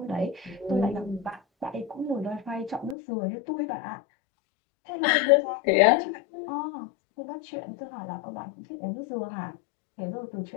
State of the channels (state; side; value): drops out; right; at 3.0 s